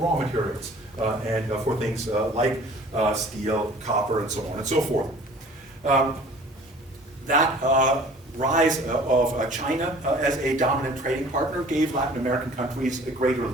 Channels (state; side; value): normal; both; correlation 0.48